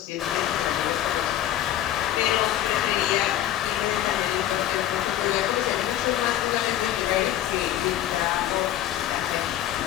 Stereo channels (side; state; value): right; quieter; 12.4 dB